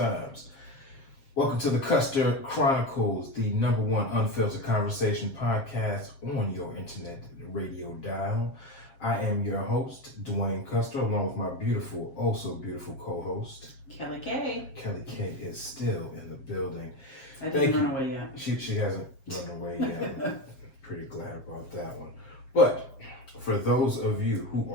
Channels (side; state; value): right; late; 7.5 ms